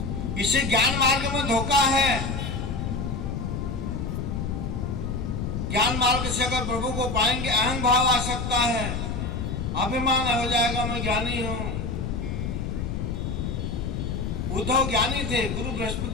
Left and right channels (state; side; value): noise; left; rumble, 3 dB below the sound